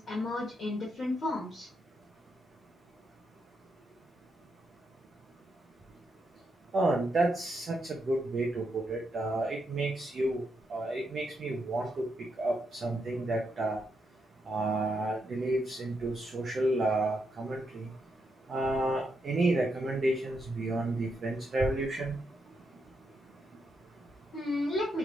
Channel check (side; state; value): both; normal; correlation 0.81